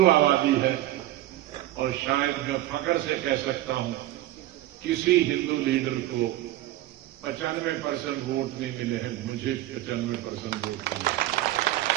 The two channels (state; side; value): quieter; left; 15.0 dB